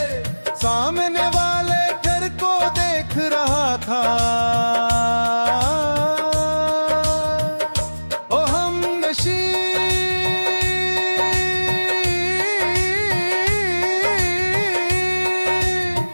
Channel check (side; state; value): both; inverted; correlation -1.00